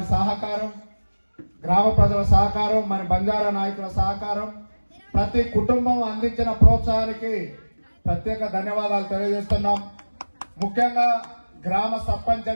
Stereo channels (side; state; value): both; inverted; correlation -1.00